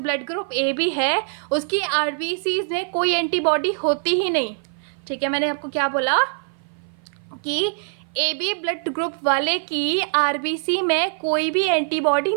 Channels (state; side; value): silent; left; 55 dB below the other